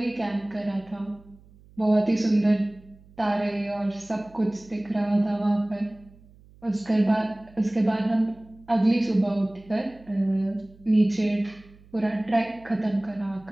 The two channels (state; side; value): noise; right; hum, 25 dB below the sound